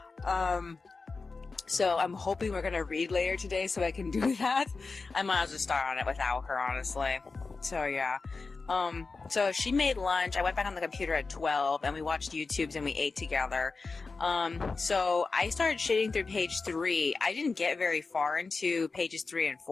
So I'm hoping we're gonna read later today so I can do that. I might as well start on it without her, honestly. So yeah. So she made lunch. I went back on the computer at 12, and we watched YouTubes and we ate together. So I started shitting through page 3. I didn't get very far into pages 3 and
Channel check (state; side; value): quieter; right; 4.2 dB